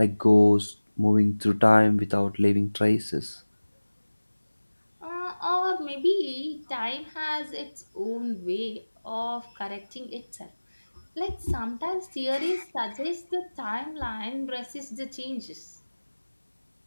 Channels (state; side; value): inverted; both; correlation -1.00